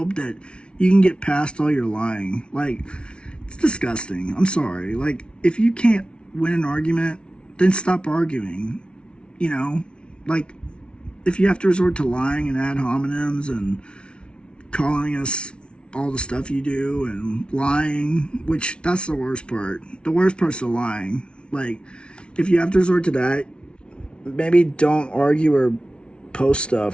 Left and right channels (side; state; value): right; late; 0.058 ms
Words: that you can get past all your lying. Like, it's disgusting. I'm sorry. Like, if you can't win an argument, then stop arguing. You know, like, if you have to resort to lying and ad hominems and calling us all the stuff you do and lying, which that's the worst part. The worst part's the lying. Like, if you have to resort to that, maybe don't argue or post